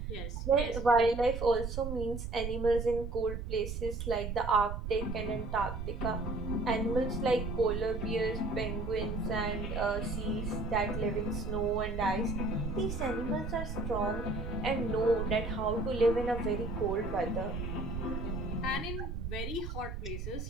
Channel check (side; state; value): right; noise; rumble, 5 dB below the sound